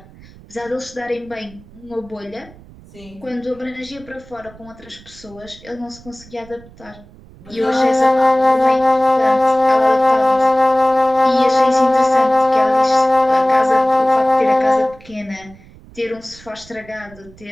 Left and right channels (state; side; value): noise; right; rumble, 23 dB below the sound